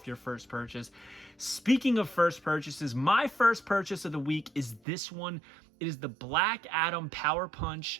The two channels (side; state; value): left; drops out; at 4.8 s